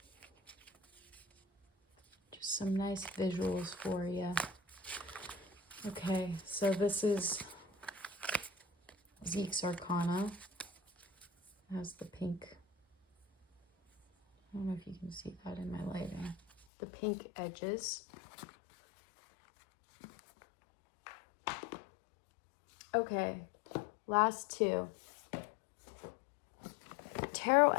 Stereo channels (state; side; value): drops out; right; at 16.7 s